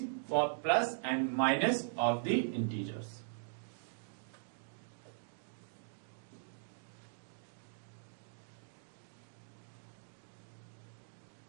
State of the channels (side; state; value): left; silent; digital silence